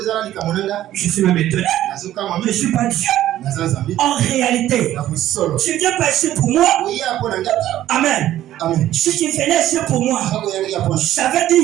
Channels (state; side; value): quieter; left; 13.2 dB